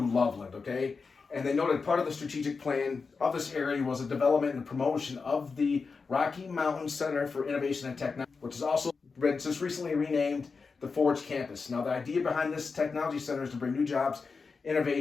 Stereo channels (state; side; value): quieter; right; 4.8 dB